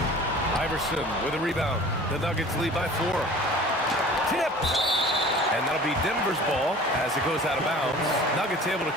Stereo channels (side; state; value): both; normal; correlation 0.44